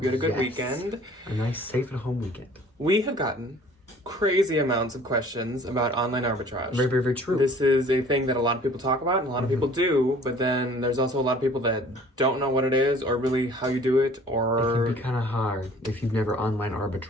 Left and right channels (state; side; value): normal; both; correlation 0.51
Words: you had a good weekend. A nice safe at home weekend. We have gotten crazy amounts of questions about online arbitrage. Very, very, very true. This is a thing that a lot of people talk about and a lot of people do, but then there's also a lot of people that don't know what it is or really how you do it, or... It can be kind of hard if you've never online